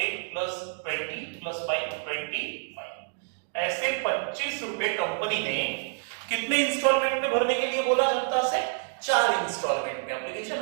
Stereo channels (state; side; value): silent; left; 59 dB below the other